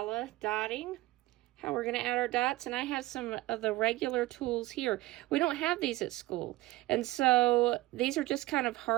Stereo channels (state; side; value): quieter; left; 18.2 dB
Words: dotting, how we're going to add our dots. And I have some of the regular tools here. We don't have these at school. And so these are just kind of